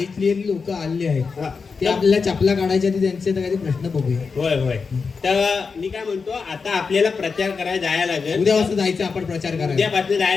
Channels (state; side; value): quieter; right; 5.0 dB